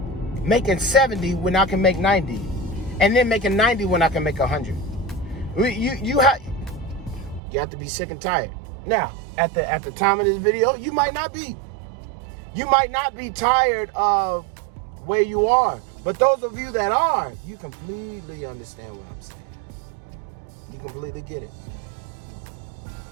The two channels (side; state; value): left; drops out; at 7.4 s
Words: making 70 when I can make 90, and then making 90 when I can make 100. You have to be sick and tired. Now, at the time of this video, you might not be. You might not be tired of where you are. But those of you that are, you completely understand what I'm saying. You completely get it.